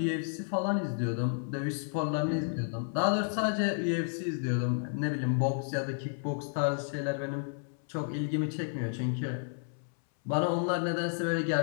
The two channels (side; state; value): right; silent; 57 dB below the other